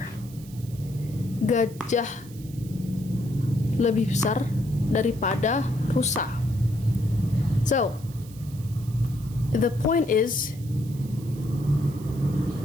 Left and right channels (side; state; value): right; noise; hiss, 21 dB below the sound